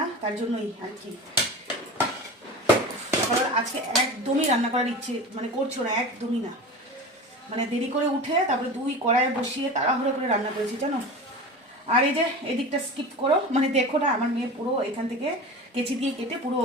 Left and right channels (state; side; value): normal; both; correlation 0.31